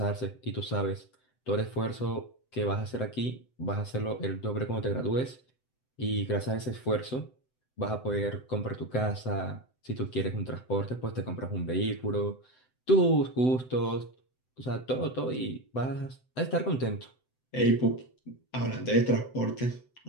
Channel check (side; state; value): right; late; 7.8 ms